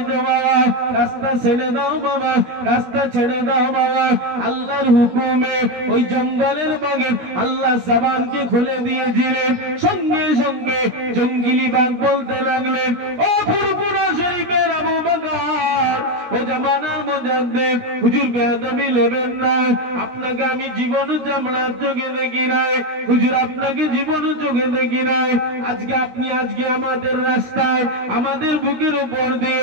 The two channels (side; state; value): left; late; 17 ms